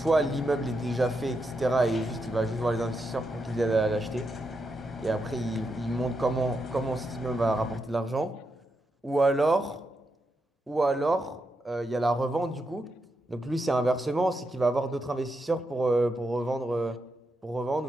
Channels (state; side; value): normal; both; correlation 0.84